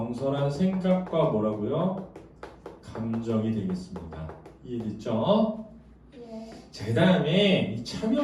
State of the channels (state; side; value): identical; both; correlation 1.00